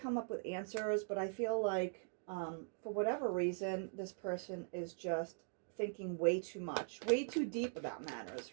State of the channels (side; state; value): left; silent; digital silence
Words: up with answers, but I feel like for whatever reason, this person is just thinking way too much, way too deep about